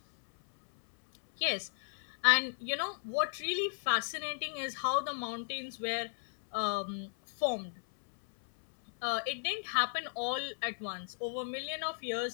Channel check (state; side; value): silent; right; 54 dB below the other